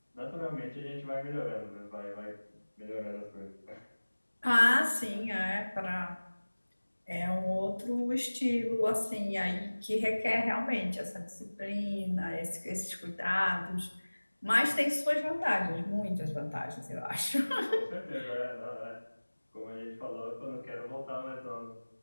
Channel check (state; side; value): inverted; both; correlation -1.00